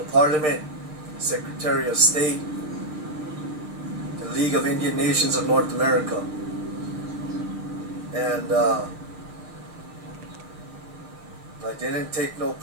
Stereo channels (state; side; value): late; left; 6.5 ms